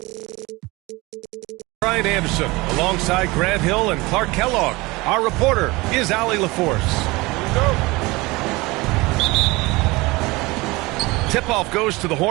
Brian Anderson alongside Grant Hill and Clark Kellogg. Our reporter is Allie LaForce. Tip-off goes to the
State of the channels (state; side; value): quieter; left; 22.7 dB